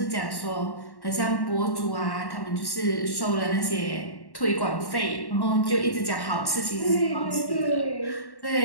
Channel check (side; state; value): right; late; 1.1 ms